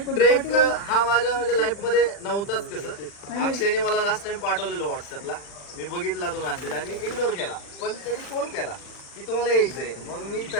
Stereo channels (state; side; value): late; right; 40 ms